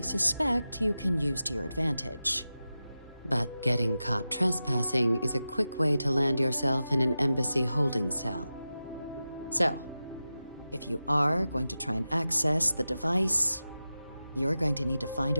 suspect you can use to your advantage. But getting caught trespassing is a quick way to land yourself in an embassy holding cell. So, if you are going to try and access the device, you're going to need to find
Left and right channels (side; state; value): both; inverted; correlation -0.93